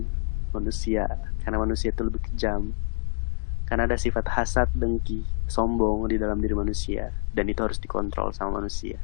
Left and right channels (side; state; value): right; silent; digital silence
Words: manusia. Karena manusia itu lebih kejam, karena ada sifat hasad, dengki, sombong di dalam diri manusia, dan itu harus dikontrol sama manusia.